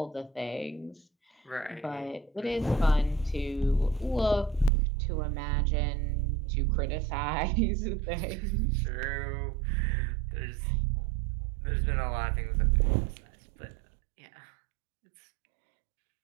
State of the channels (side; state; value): left; drops out; at 4.7 s